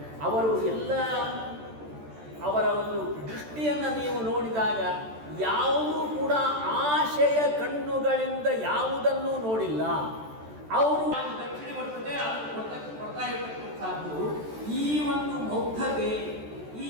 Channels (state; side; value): late; left; 13 ms